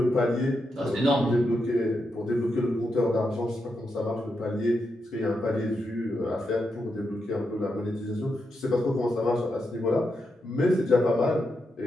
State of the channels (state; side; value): normal; both; correlation 0.84